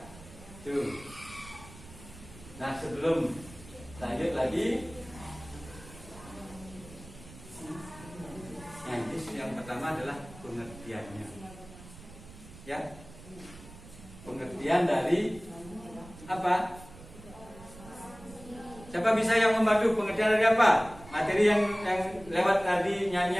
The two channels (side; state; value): right; noise; rumble, 18 dB below the sound